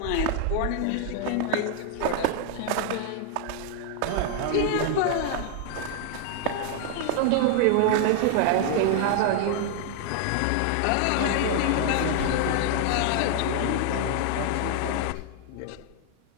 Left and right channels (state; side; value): different; both; correlation 0.00